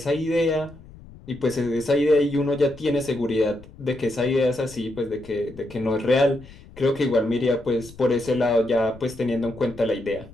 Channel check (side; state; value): left; noise; rumble, 20 dB below the sound